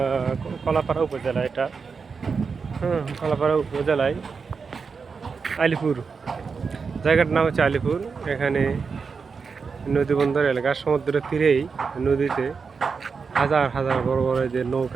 কলাপাড়া উপজেলা। এটা কলাপাড়া উপজেলায় আলিপুর, জায়গাটার নাম হচ্ছে আলিপুর। এখানে নদী বন্দর এলাকা, সমুদ্রের তীরেই নদীতে হাজার হাজার বড় বড় যে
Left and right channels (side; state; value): left; quieter; 5.3 dB